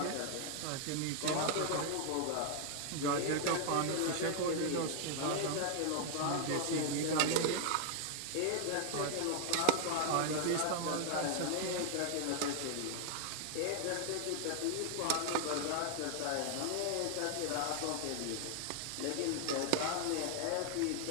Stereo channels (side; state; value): both; different; correlation 0.00